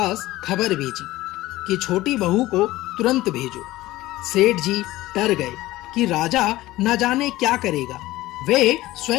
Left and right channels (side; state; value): right; quieter; 17.3 dB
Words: खबर भेजी कि छोटी बहू को तुरंत भेजो। सेठ जी डर गए कि राजा न जाने क्या करेगा। वे